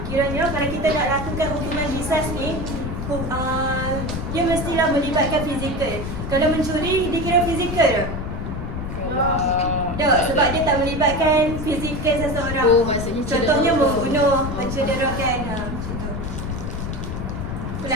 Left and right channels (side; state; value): left; noise; rumble, 5 dB below the sound